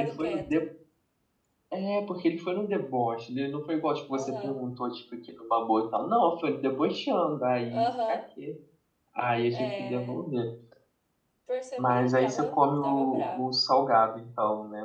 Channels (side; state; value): both; identical; correlation 1.00